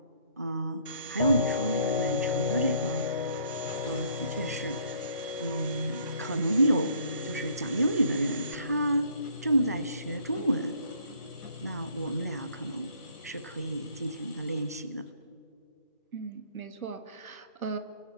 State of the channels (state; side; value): inverted; both; correlation -0.62